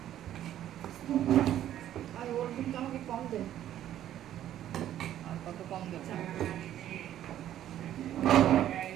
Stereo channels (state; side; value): quieter; left; 11.8 dB